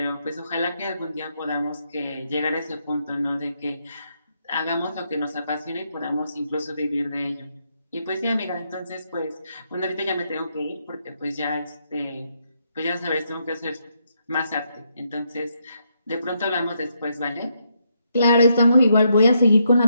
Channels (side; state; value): both; inverted; correlation -0.78